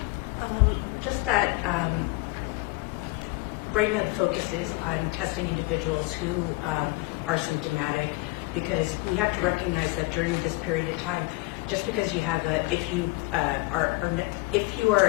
Just that right now the focus is on testing individuals who are symptomatic, because we have to recognize that during this period of time, just because you have if you are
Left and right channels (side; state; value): right; quieter; 22.8 dB